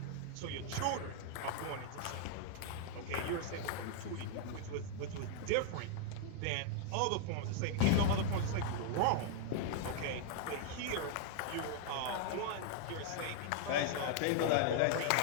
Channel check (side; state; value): both; different; correlation 0.00